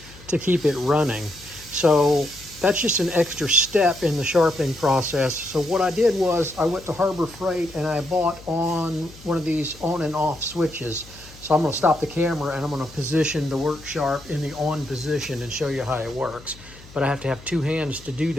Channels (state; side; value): noise; left; hum, 21 dB below the sound